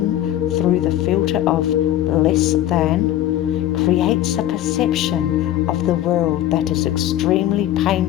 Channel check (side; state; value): right; quieter; 12.8 dB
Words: through the filter of less than creates a perception of the world that is extremely